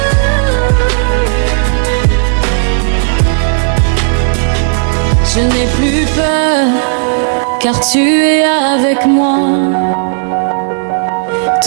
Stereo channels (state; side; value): silent; left; digital silence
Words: Je n'ai plus peur, car tu es avec moi.